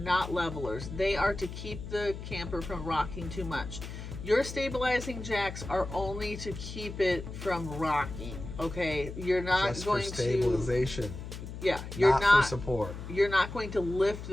levelers. They are to keep the camper from rocking too much. Your stabilizing jacks are only to keep it from rocking, okay? You're not just going for stabilization. Yeah, you're not for support. You're not going to lift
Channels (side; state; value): left; noise; hum, 9 dB below the sound